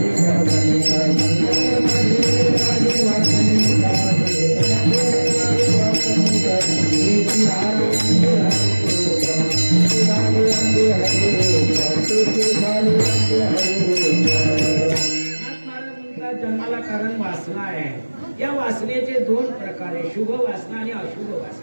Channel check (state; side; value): inverted; both; correlation -1.00